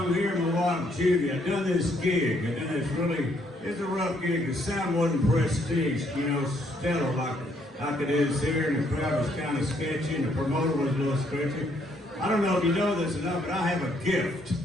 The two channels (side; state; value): both; normal; correlation 0.70